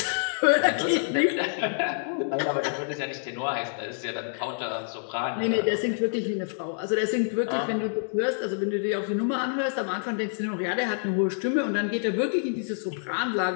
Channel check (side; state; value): right; silent; digital silence